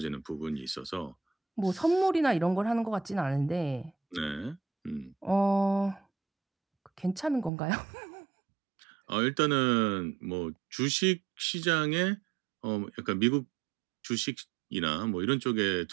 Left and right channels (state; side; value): drops out; left; at 7.5 s